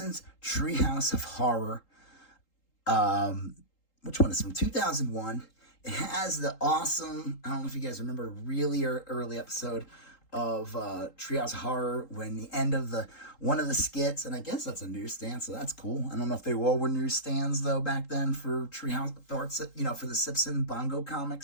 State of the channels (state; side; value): late; right; 3.8 ms